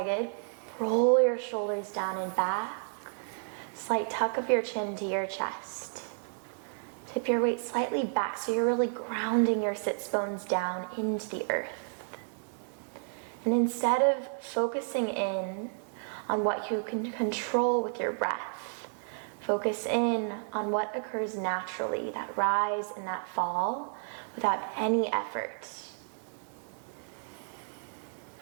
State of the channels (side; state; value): left; silent; digital silence